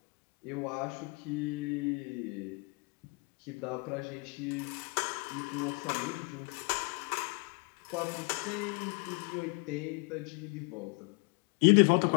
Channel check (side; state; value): right; quieter; 30.9 dB